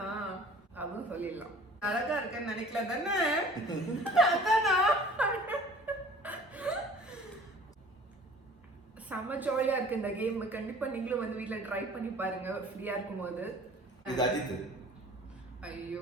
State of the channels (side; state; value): both; normal; correlation 0.48